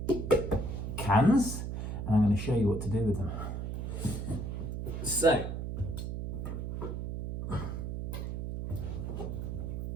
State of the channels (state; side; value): noise; right; hum, 4 dB below the sound